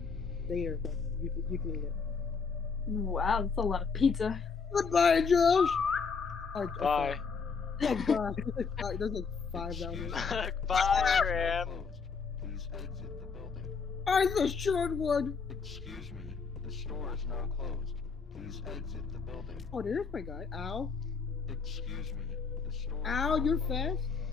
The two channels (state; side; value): quieter; right; 5.3 dB